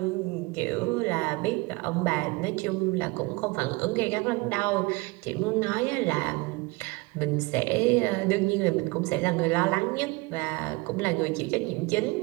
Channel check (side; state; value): left; quieter; 24.8 dB